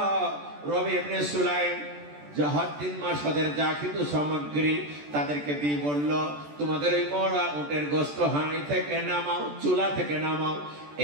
রবি ইবনে সুলাইম হজ 3 মাস হজের যা কিছু সামগ্রী তাদেরকে দিয়ে বলল, তোমাদের এই মরা উটের গোস্ত হাঁড়ি থেকে নামাও, চুলা থেকে নামাও,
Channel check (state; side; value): late; left; 14 ms